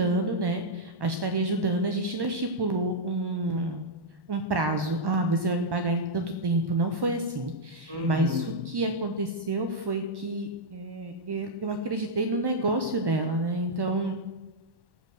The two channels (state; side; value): late; left; 1.1 ms